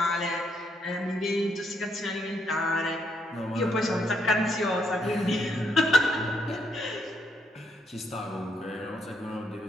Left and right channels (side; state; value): both; normal; correlation 0.75